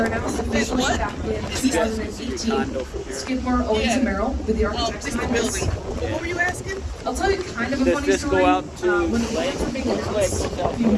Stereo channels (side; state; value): both; identical; correlation 1.00